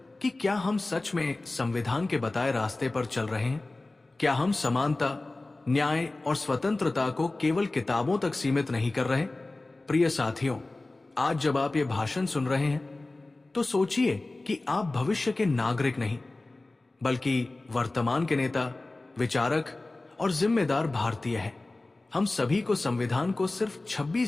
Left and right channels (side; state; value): right; quieter; 3.0 dB